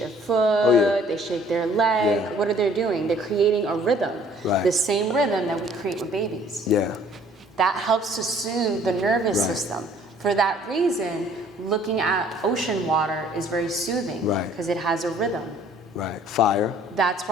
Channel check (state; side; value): normal; both; correlation 0.56